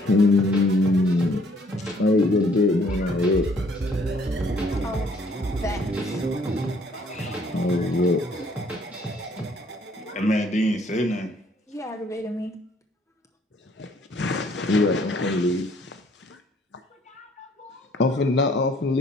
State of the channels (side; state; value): both; normal; correlation 0.62